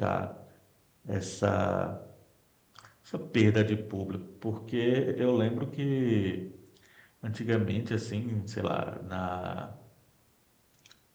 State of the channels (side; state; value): both; identical; correlation 1.00